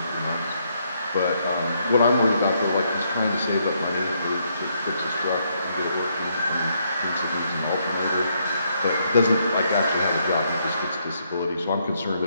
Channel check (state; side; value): inverted; both; correlation -0.74